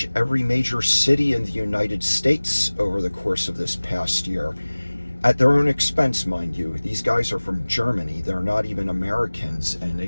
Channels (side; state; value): both; inverted; correlation -1.00